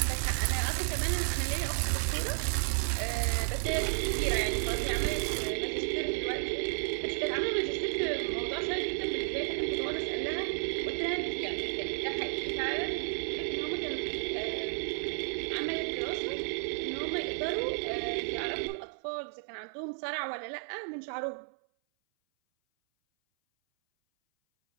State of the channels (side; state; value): left; silent; 56 dB below the other